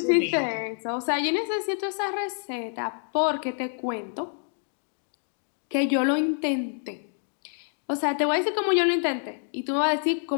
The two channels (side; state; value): right; silent; 60 dB below the other